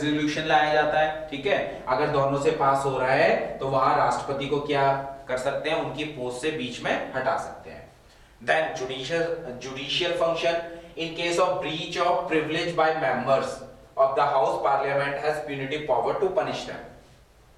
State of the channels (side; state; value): both; identical; correlation 1.00